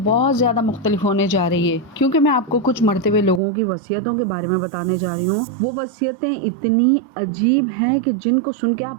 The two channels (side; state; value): left; drops out; at 3.4 s